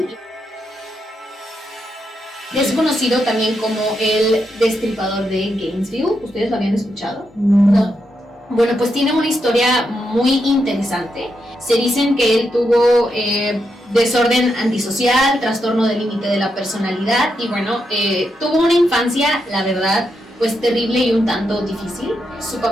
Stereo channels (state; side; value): normal; both; correlation 0.83